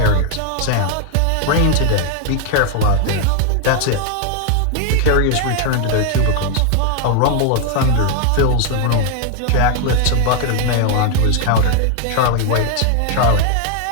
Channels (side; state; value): both; different; correlation 0.00